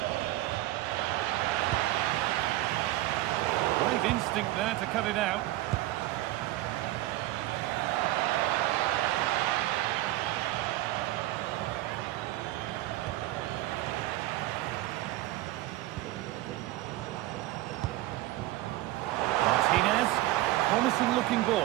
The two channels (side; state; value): left; quieter; 16.8 dB